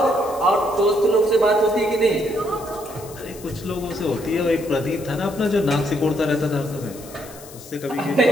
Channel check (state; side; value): noise; left; hiss, 18 dB below the sound